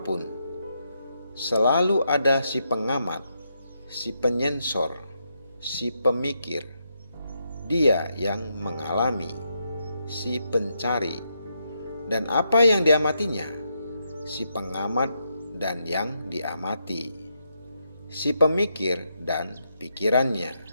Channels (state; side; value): inverted; both; correlation -0.81